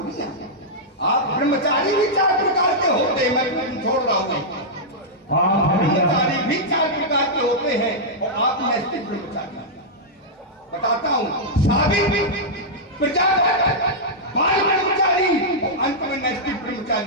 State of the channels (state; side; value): normal; both; correlation -0.09